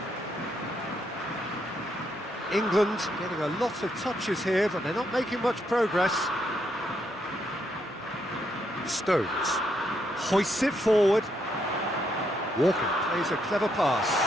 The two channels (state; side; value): normal; both; correlation 0.77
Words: England getting a lot of touches here, but they're not making much progress. Stones hoists it forward. Walker plays a clever pass.